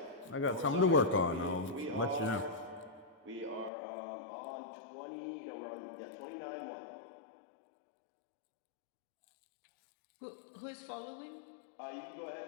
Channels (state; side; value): drops out; right; at 3.7 s